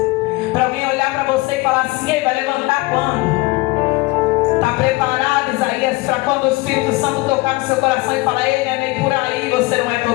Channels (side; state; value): right; quieter; 22.7 dB